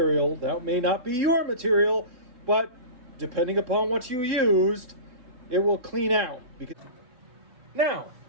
That may not be your material, but depending upon what you used, it will clean out. Now,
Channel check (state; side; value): late; left; 3.3 ms